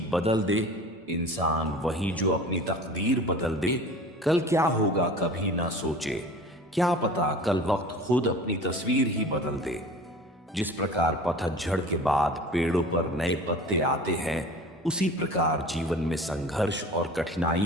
बदल दे इंसान, वही जो अपनी तकदीर बदल दे। कल क्या होगा कभी ना सोचे, क्या पता कल वक्त खुद अपनी तस्वीर ही बदल दे। जिस प्रकार पतझड़ के बाद पेड़ों पर नए पत्ते आते हैं, उसी प्रकार जीवन में संघर्ष और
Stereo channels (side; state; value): both; normal; correlation 0.40